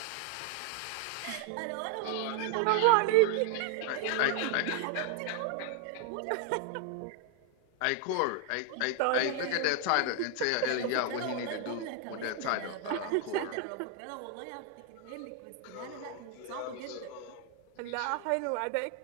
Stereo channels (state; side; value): different; both; correlation 0.00